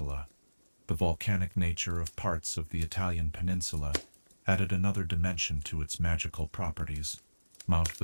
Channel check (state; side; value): inverted; both; correlation -1.00